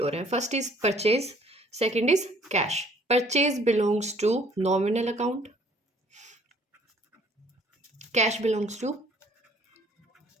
हो रहे हैं। First is purchase, second is cash. Purchase belongs to nominal account, cash belongs to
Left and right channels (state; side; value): normal; both; correlation 0.59